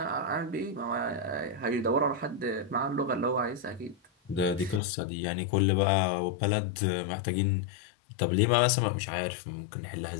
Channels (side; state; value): right; drops out; at 4.8 s